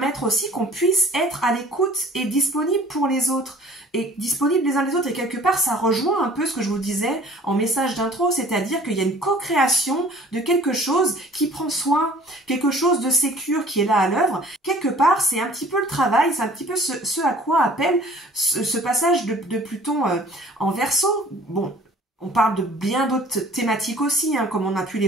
aussi qu'on puisse être à l'écoute et disponible pour les autres, et disponible les uns les autres, et quelque part ça rejoint un peu ce que je vous disais en message d'intro, c'est-à-dire qu'il y a une co-création de quelque chose qui prend soin, quelque chose de sécure qui est là à l'œuvre. Quelque part c'est un petit peu le travail, c'est un petit peu ce à quoi appelle ce passage de Pluton en Verseau. Bon, on parle de bien d'autres thématiques aussi, comme on a pu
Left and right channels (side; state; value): both; normal; correlation 0.51